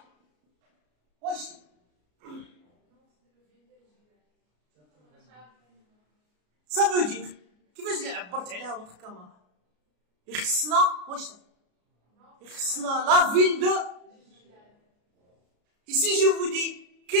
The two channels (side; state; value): left; late; 33 ms